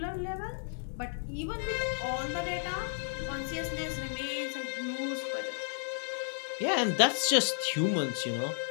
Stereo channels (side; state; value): right; silent; digital silence